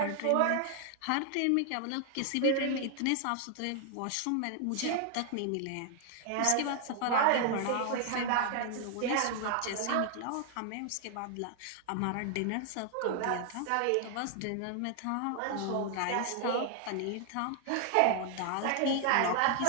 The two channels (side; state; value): both; different; correlation 0.00